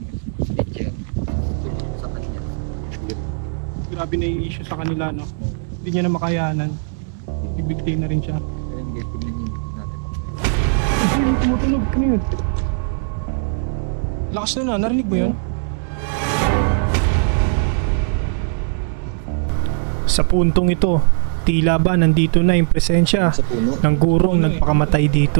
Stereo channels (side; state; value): left; silent; digital silence